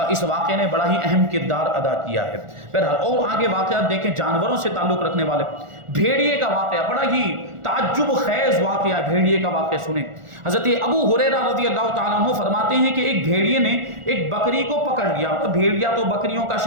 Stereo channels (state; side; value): late; left; 1.4 ms